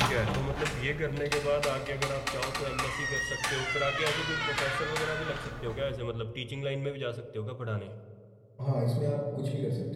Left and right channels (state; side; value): identical; both; correlation 1.00